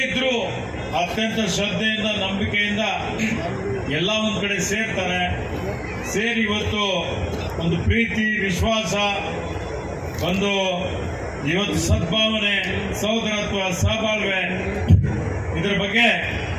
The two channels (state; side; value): identical; both; correlation 1.00